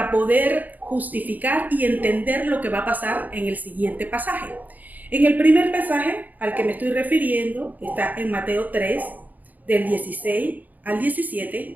poder justificar y entender lo que va a pasar en el siguiente pasaje. En el primer pasaje al que me estoy refiriendo está en Mateo 3, del 16 al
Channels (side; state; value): left; late; 0.082 ms